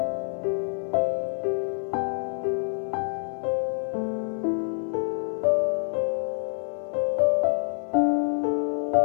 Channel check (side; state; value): right; silent; 58 dB below the other